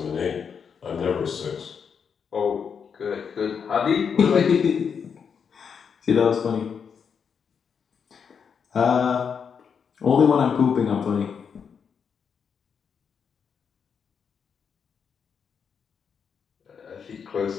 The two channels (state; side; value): quieter; right; 6.7 dB